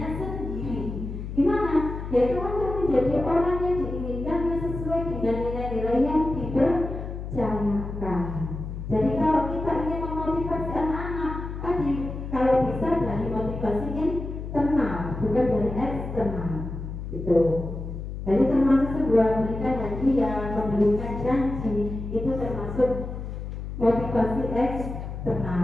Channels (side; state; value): left; noise; hum, 7 dB below the sound